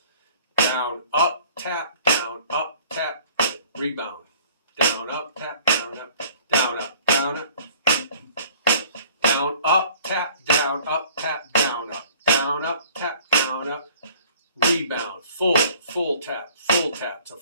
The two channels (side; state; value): both; inverted; correlation -0.52